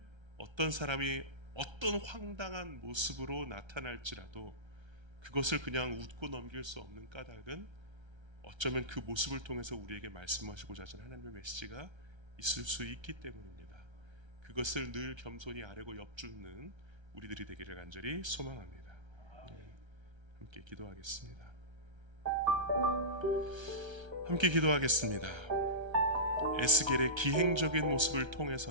어떤 사람이 어떤 황당한 모습으로 나타날지라도 그것을 그냥 웃고 넘길 수 없는 까닭은 어쩌면 그 모습을 통해서 우리에게 말씀하시고자 하시는 하나님의 메시지가 있을 수 있기 때문입니다. 그것을 늘 겸손히 아뢰고 엿줍는 우리들이 되기를 간절히 소망합니다. 함께 기도하겠습니다. 함께 기도하겠습니다. 에스겔의 기행적인 모습을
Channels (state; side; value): late; left; 1.3 ms